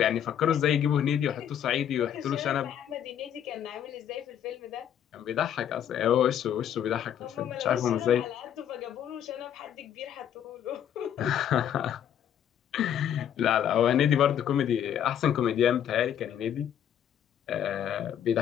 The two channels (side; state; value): right; quieter; 9.7 dB